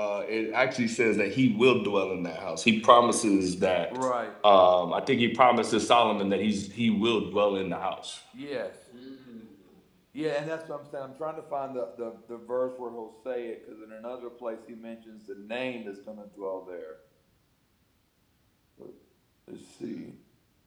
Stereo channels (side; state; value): both; identical; correlation 1.00